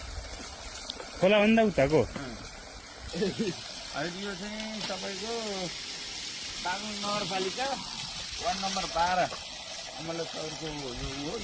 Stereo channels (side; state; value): both; identical; correlation 1.00